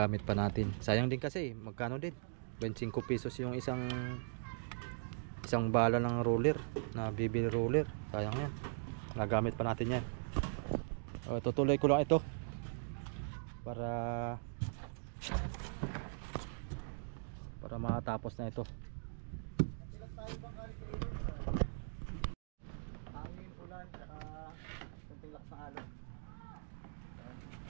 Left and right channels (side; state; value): left; silent; digital silence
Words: pa natin. Sayang din kasi, magkano din? 25 pesos yung isang bala ng roller, na BB roller. Sayang yan. Nagamit pa natin yan. Tutuloy ko lang ito. Para makatapos na ito. Hangin, ulan, saka kunting lakas ng alon.